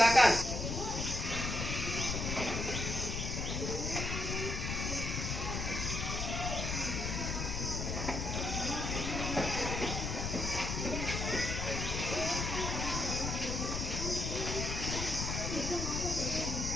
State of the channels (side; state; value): left; noise; rumble, 2 dB below the sound